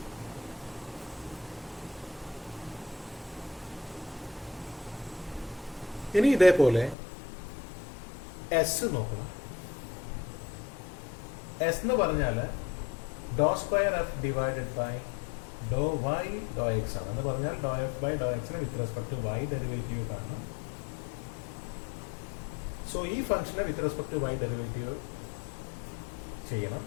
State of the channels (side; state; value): right; drops out; at 7.0 s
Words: ഇനി ഇതേപോലെ എസ് നോക്കണം. എസ് എന്ന് പറഞ്ഞാൽ doe square F divided by Dr Y doe X ആണ്. എന്ന് പറഞ്ഞാൽ ഡോ എഫ് ബൈ ഡോ എക്സിന് with respect to Y derivative കാണണം. സോ ഈ ഫംഗ്ഷനെ with respect to Y derivative ചെയ്യണം.